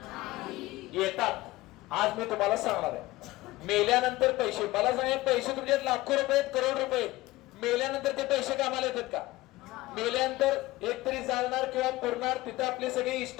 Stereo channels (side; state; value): right; quieter; 18.7 dB